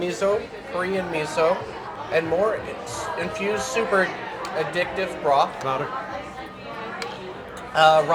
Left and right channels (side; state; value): both; identical; correlation 1.00